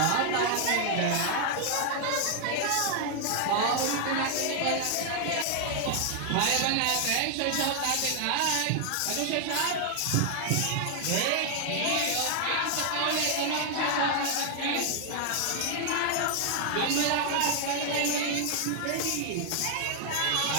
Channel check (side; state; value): both; different; correlation 0.00